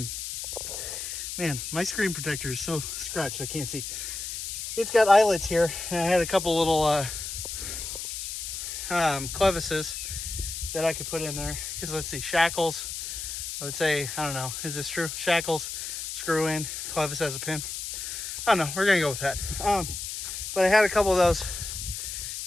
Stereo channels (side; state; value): left; noise; hiss, 6 dB below the sound